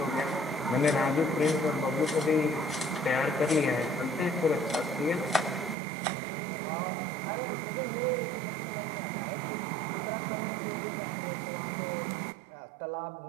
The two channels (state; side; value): drops out; left; at 5.8 s